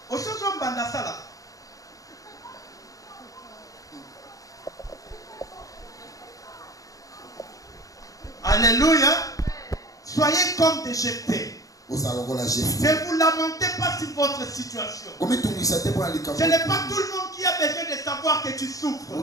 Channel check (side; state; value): right; late; 0.17 ms